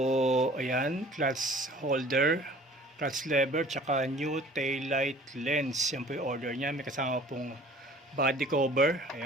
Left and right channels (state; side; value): normal; both; correlation 0.49